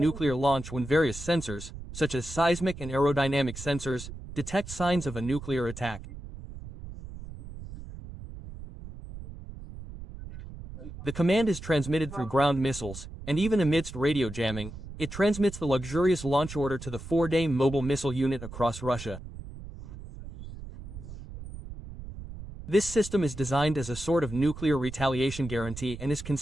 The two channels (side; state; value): right; noise; rumble, 12 dB below the sound